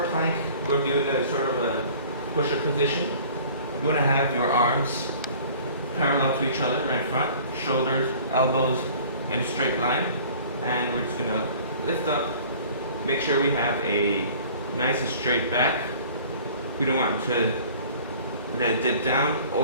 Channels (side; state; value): both; inverted; correlation -0.48